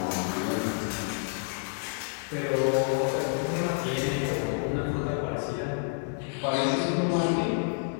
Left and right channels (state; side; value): silent; right; 59 dB below the other